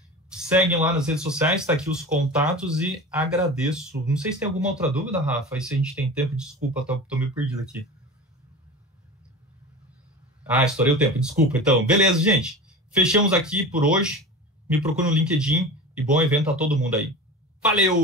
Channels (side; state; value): both; normal; correlation 0.33